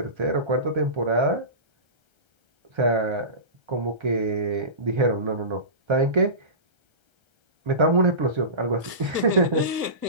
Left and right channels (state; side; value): late; left; 1.4 ms